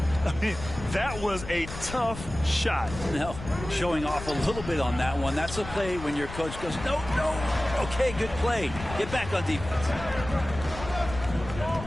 I mean, that was a tough shot. No, showing off a little bit on that one. That's a play when your coach goes, no, no. Okay, good play. Get back on defense.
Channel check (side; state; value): left; noise; rumble, 11 dB below the sound